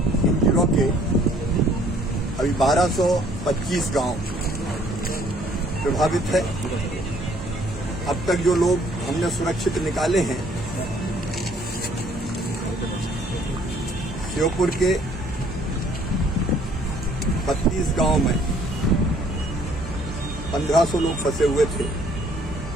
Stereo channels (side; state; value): both; normal; correlation 0.61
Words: इन जिलों के अभी 1225 गांव प्रभावित है। अब तक जो लोग हमने सुरक्षित निकाले हैं, श्योपुर के 32 गांव में 1500 लोग फंसे हुए थे।